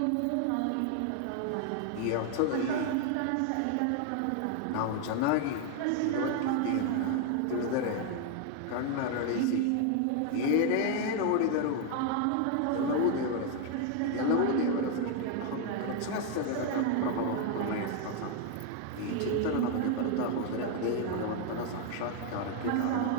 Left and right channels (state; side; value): different; both; correlation 0.00